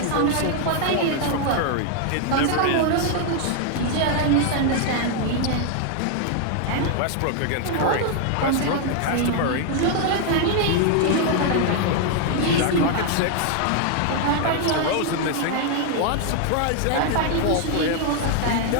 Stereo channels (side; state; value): both; different; correlation 0.00